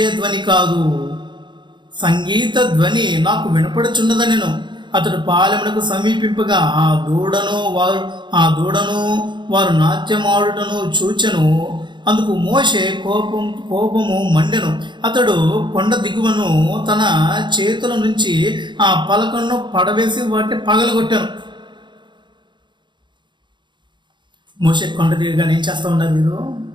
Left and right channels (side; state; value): left; late; 0.22 ms